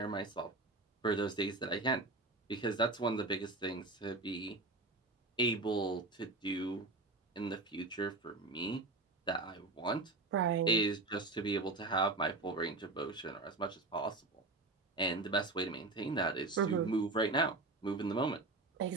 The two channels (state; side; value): quieter; left; 3.2 dB